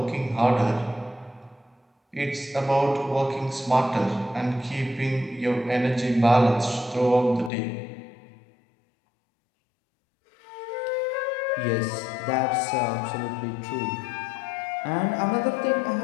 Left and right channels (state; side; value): drops out; right; at 7.5 s